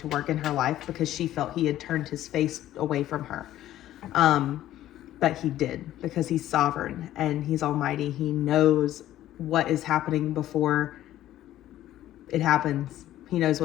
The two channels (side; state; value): right; quieter; 13.4 dB